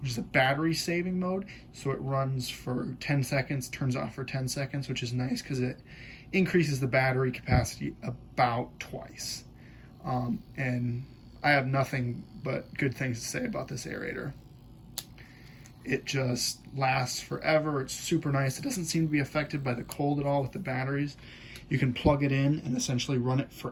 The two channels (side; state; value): both; identical; correlation 1.00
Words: is a battery saving mode. So it runs for 10 seconds, turns off for 10 seconds, which is nice because it increases the battery capacity about twice. And I have nothing but good things to say about this aerator. It just lasts forever. It's super nice. It doesn't seem to be affected by the cold at all with the batteries. You can plug it in and essentially run it